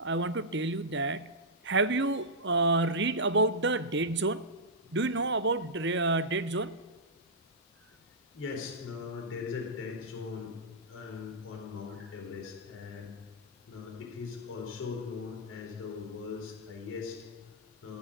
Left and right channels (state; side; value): normal; both; correlation -0.11